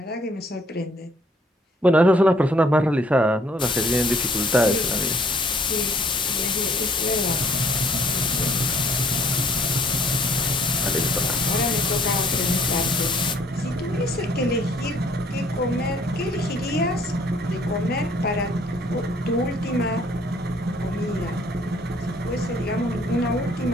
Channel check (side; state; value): both; normal; correlation 0.60